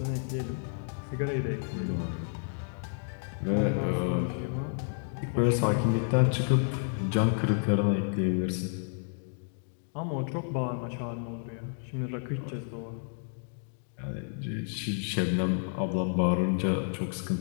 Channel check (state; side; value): silent; right; digital silence